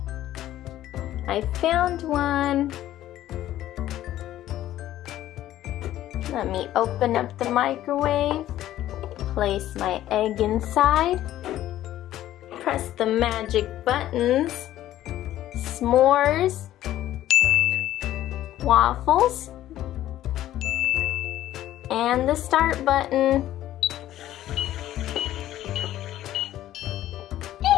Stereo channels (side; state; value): right; quieter; 13.4 dB